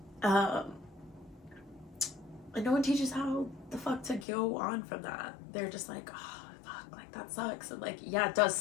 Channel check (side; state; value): right; drops out; at 4.2 s